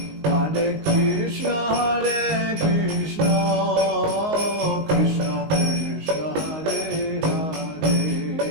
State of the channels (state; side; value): late; left; 19 ms